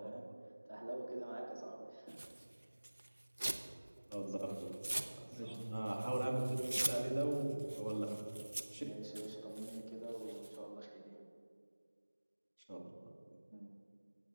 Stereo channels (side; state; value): both; inverted; correlation -1.00